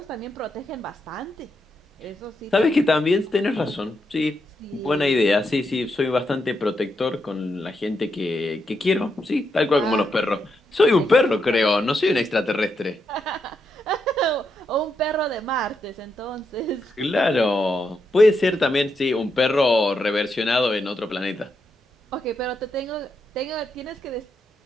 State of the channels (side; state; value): both; normal; correlation 0.82